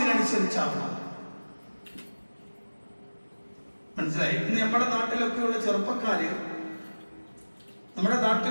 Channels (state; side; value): inverted; both; correlation -1.00